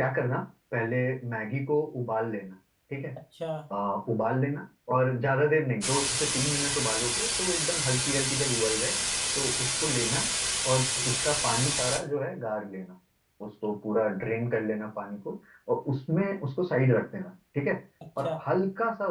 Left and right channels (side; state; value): both; identical; correlation 1.00